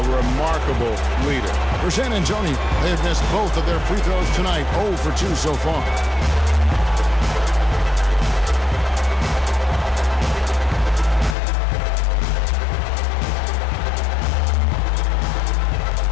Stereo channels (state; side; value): drops out; right; at 11.4 s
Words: remarkable leader. For San Antonio, they have missed both of their free throws tonight, 0 for 2 so far.